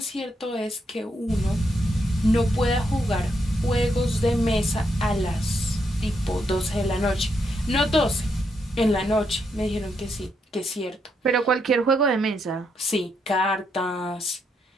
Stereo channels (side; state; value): both; normal; correlation 0.79